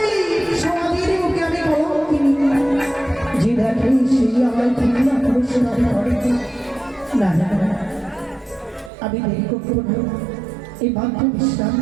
সমাধির মুখে আমি কলঙ্কিনী। যে দেখে সেই আমার ঘৃণা পুরস্কার করে। না না না, আমি দেরি করতে পারব এই বাধ্য বিশ্রাম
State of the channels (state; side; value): drops out; left; at 8.9 s